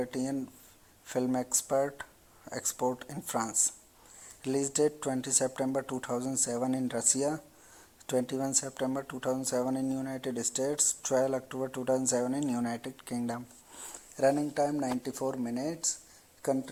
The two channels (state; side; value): identical; both; correlation 1.00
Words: Film Export in France. Release date 20 September 2007 in Russia, 21 September 2007 in United States, 12 October 2007 in United Kingdom. Running time 94 minutes.